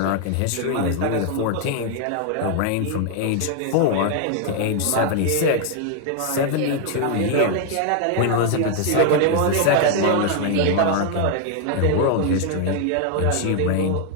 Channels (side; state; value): both; different; correlation 0.00